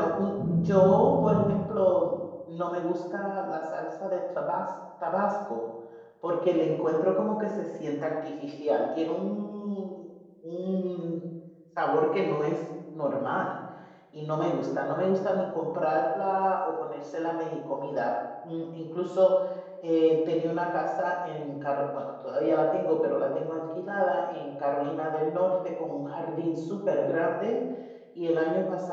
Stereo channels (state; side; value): identical; both; correlation 1.00